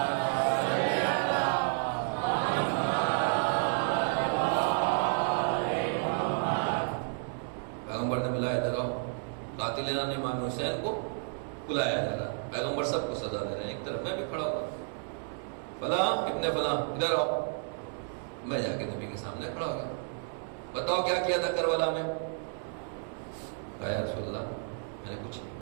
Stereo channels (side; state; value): left; silent; 57 dB below the other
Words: پیغمبر نے بلایا، ادھر آؤ، قاتلین امام حسین کو بلایا جا رہا، پیغمبر سب کو سزا دے رہے ہیں، ایک طرف میں بھی کھڑا ہوا، فلاں ابن فلاں ادھر آؤ، میں جا کے نبی کے سامنے کھڑا ہو گیا، بتاؤ کیا کیا تھا کربلا میں؟ کہا یا رسول اللہ میں نے کچھ